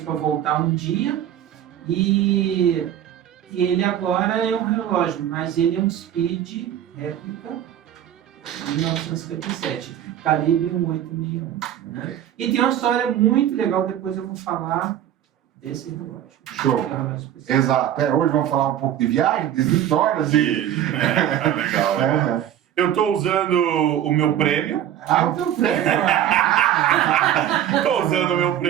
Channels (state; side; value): quieter; left; 10.9 dB